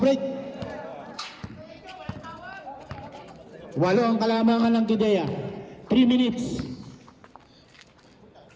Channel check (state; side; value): identical; both; correlation 1.00